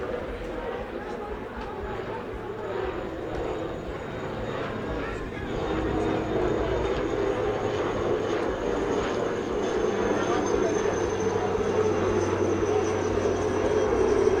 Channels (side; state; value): both; identical; correlation 1.00